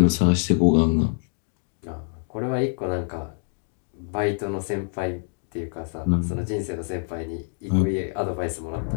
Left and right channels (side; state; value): right; silent; 61 dB below the other